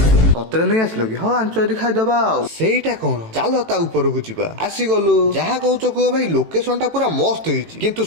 सतरे नहीं आसलो कि हाँ आंच यदि खाईदबा सेटा कौन चलो ता ऊपर को जीवा आसी गलु जहा कहूच कह भाई लोकेशन टा पूरा मस्त होईची किंतु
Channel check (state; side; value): late; left; 18 ms